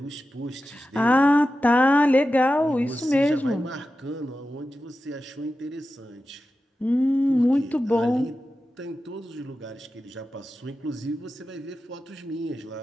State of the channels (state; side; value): normal; both; correlation 0.92